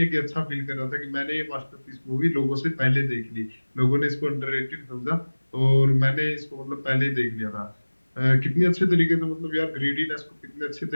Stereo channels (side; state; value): both; inverted; correlation -1.00